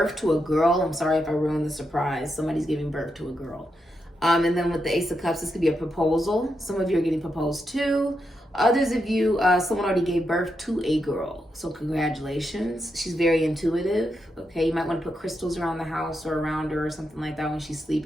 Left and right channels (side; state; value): both; normal; correlation 0.84